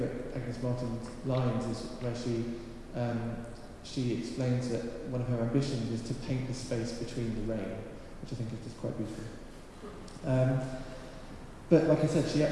Agnes Martin lines is where she explains that one of her ambitions is to paint the space between the rain, which I think is just quite beautiful. But like I said, she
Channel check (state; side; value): identical; both; correlation 1.00